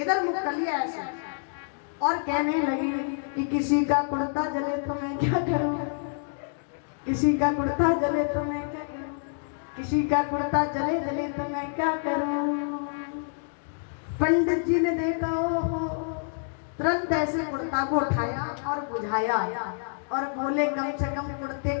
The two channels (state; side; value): silent; right; digital silence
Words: इधर मुंह कर लिया ऐसे, और कहने लगी कि किसी का कुर्ता जले तो मैं क्या करूं, किसी का कुर्ता जले तो मैं क्या करूं, किसी का कुर्ता जले जले तो मैं क्या करूं। पंडित जी ने देखा, ओहो, तुरंत ऐसे कुर्ता को उठाया और बुझाया और बोले कम से कम कुर्ते